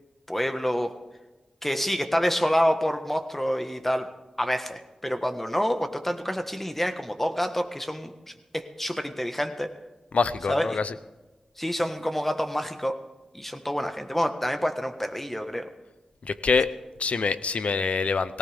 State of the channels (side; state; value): both; normal; correlation 0.91